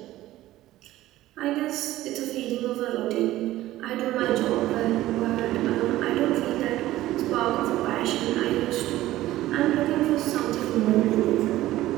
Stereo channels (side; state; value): left; quieter; 15.5 dB